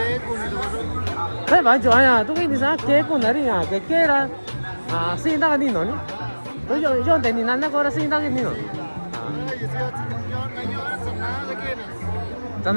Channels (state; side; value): inverted; both; correlation -1.00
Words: Thế bảo cho anh tôi cái gì sao kế của nó đi nhá, cái là sinh ra cái gì nó nhỉ? Tôi cho để nhìn nó có là sinh ra cái gì nó. Chẳng